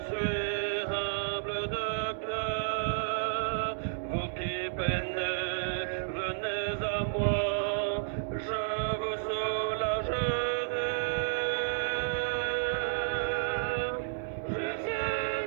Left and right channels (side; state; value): left; silent; digital silence